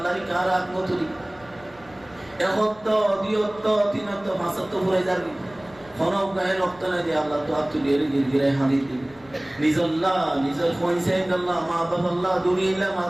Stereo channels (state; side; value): noise; left; rumble, 25 dB below the sound